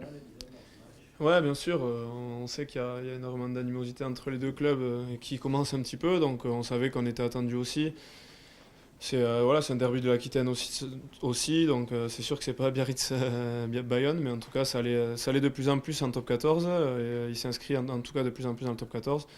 disons, dans ce match? Ouais, bien sûr, on sait qu'il y a énormément d'animosité entre les deux clubs qui commence un petit peu, donc on savait qu'on était attendu aussi. Voilà, c'est un derby de l'Aquitaine aussi donc c'est sûr que c'est pas Biarritz Bayonne, mais en tout cas ça allait de plus en plus en top 14, et il s'inscrit en tout cas de plus en plus dans le top 14.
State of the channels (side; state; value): both; identical; correlation 1.00